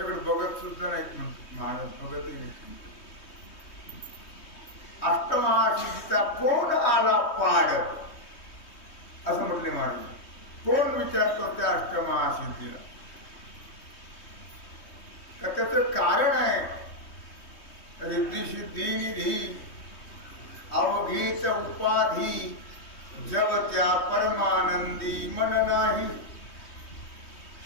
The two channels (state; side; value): late; right; 3.2 ms